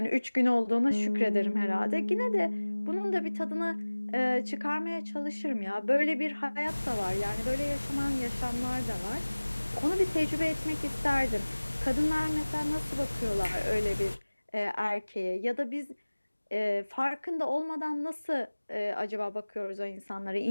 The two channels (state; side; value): inverted; both; correlation -1.00